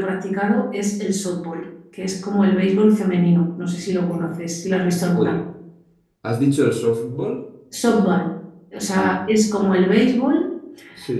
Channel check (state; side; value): identical; both; correlation 1.00